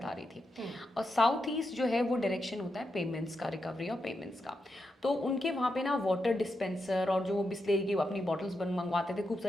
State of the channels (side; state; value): both; normal; correlation 0.86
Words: आ रही थी। और साउथ ईस्ट जो है वो डायरेक्शन होता है पेमेंट्स का, रिकवरी और पेमेंट्स का। तो उनके वहाँ पे ना वाटर डिस्पेंसर और जो बिस्लेरी की अपनी बॉटल्स मंगवाते थे खूब